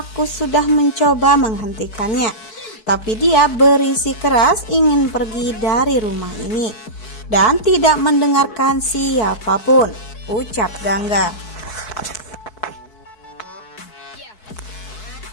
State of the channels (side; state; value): right; late; 4.6 ms